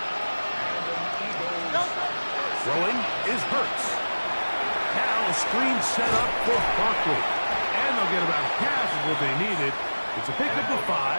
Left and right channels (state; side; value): inverted; both; correlation -1.00